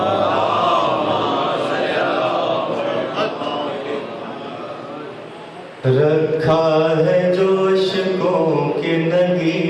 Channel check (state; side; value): identical; both; correlation 1.00